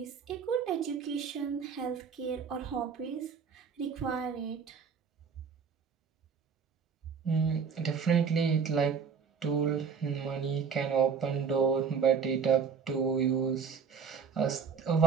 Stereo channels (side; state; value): left; quieter; 6.3 dB